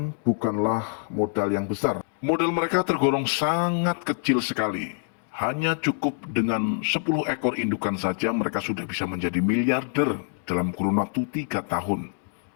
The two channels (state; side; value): silent; right; 61 dB below the other